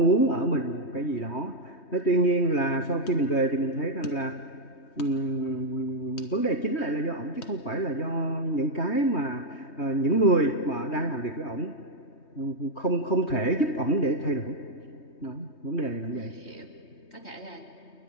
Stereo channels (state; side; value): late; right; 3.2 ms